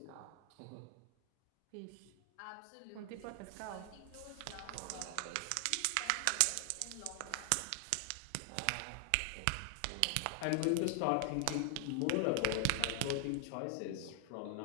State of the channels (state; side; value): different; both; correlation 0.00